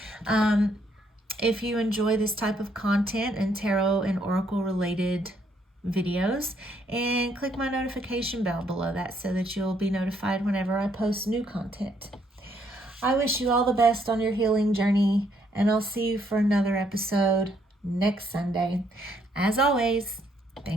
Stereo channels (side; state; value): both; normal; correlation 0.70